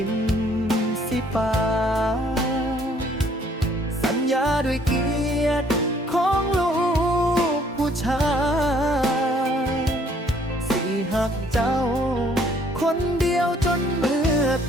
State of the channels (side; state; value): both; normal; correlation 0.62